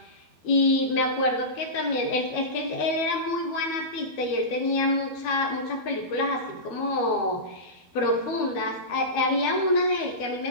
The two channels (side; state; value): right; late; 12 ms